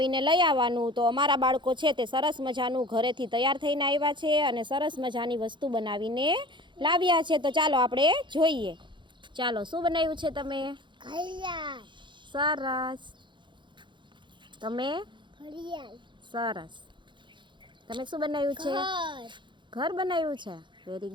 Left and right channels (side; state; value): left; late; 0.23 ms